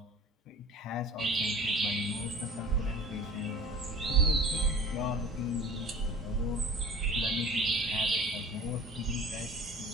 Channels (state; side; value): normal; both; correlation 0.41